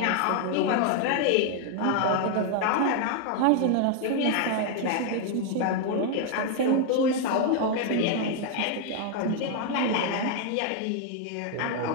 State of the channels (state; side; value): different; both; correlation 0.00